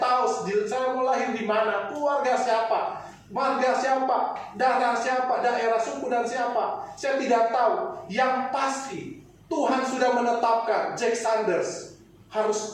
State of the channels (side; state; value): both; identical; correlation 1.00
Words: saya mau lahir di mana, keluarga siapa, marga siapa, darah siapa, daerah suku dan siapa. Saya tidak tahu. Yang pasti Tuhan sudah menetapkan Jack Sanders harus